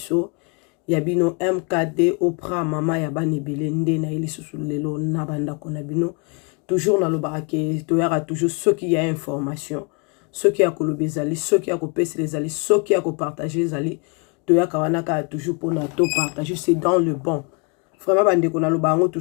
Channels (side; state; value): right; quieter; 33.7 dB